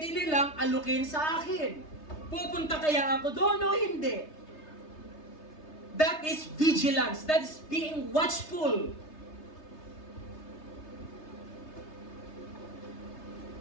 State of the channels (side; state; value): right; late; 3.3 ms